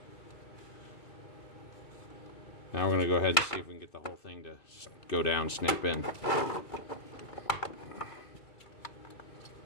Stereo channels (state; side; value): late; right; 2.3 ms